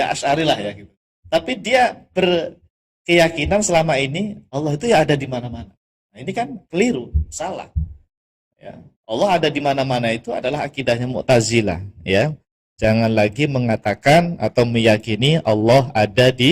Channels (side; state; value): both; identical; correlation 1.00